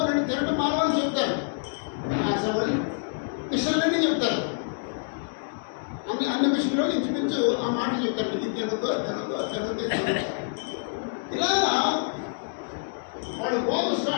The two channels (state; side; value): silent; right; digital silence